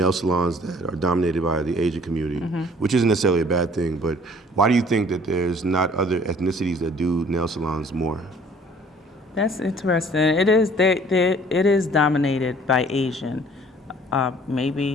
salons that are dominated by the Asian community, which isn't necessarily a bad thing. But why do you think that there's not other ethnicities that do nail salons more? That's interesting. It is. It is dominated by Asian.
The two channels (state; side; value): normal; both; correlation 0.54